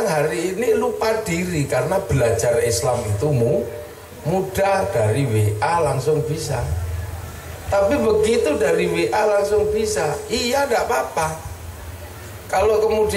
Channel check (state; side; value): identical; both; correlation 1.00